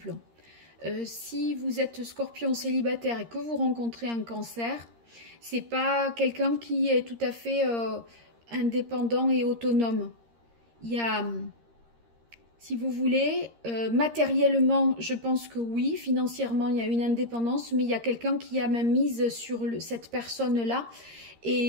Si vous êtes Scorpion célibataire et que vous rencontrez un cancer, c'est pas quelqu'un qui est tout à fait indépendant et autonome. Il y a, si vous voulez, matériellement, je pense que oui, financièrement, il y a une indépendance, mais il y a quelqu'un qui a même mise sur cette personne-là.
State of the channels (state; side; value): late; left; 13 ms